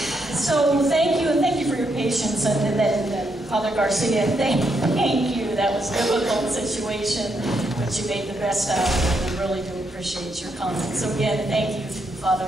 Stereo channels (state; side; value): normal; both; correlation 0.79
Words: so thank you for your patience, and then Father Garcia, thank you. That was a difficult situation, but you made the best out of it, and I really do appreciate your comments. So again, thank you,